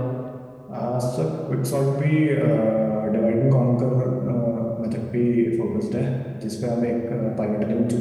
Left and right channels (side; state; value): both; identical; correlation 1.00